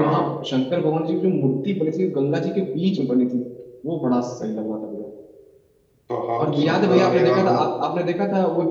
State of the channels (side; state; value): both; identical; correlation 1.00